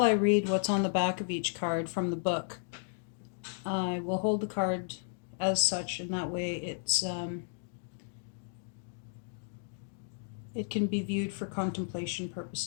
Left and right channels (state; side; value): silent; right; digital silence